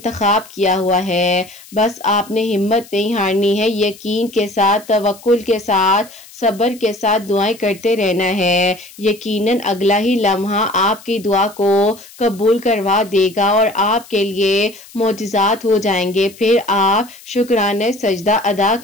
کیا ہوا ہے۔ بس آپ نے ہمت نہیں ہارنی ہے، یقین کے ساتھ، توکل کے ساتھ، صبر کے ساتھ دعائیں کرتے رہنا ہے۔ یقیناً اگلا ہی لمحہ آپ کی دعا کو قبول کروا دے گا اور آپ کے لیے معجزات ہو جائیں گے، پھر آپ شکرانے سجدہ ادا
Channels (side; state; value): left; noise; hiss, 21 dB below the sound